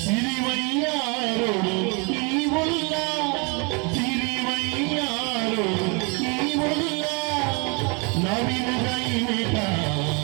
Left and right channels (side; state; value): left; quieter; 32.8 dB